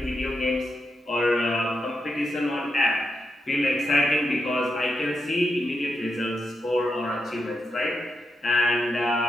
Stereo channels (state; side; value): normal; both; correlation 0.85